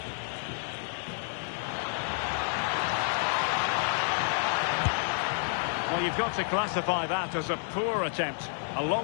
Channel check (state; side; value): silent; right; 58 dB below the other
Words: Well, you've got to classify that as a poor attempt. A